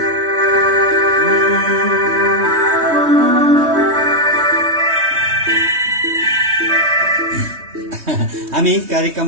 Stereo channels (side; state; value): left; late; 3.2 ms